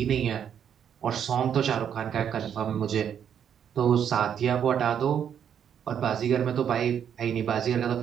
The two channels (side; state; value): left; quieter; 8.6 dB